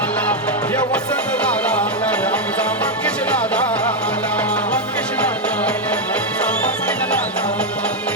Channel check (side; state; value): both; normal; correlation 0.03